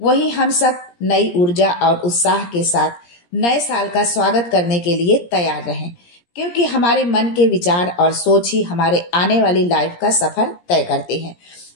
वहीं हम सब नई ऊर्जा और उत्साह के साथ नए साल का स्वागत करने के लिए तैयार रहें, क्योंकि हमारे मन के विचार और सोच ही हमारे आने वाली लाइफ का सफर तय करते हैं।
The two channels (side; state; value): right; late; 17 ms